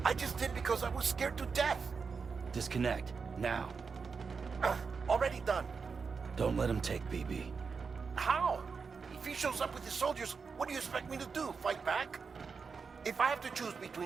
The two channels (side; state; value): left; quieter; 5.3 dB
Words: I just did because I was scared to death. Disconnect, now. Already done. Don't let him take BB. How? If he shows up with his soldiers, what do you expect me to do? Fight back? If I have to choose